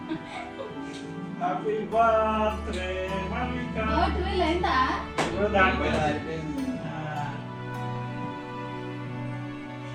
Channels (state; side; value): identical; both; correlation 1.00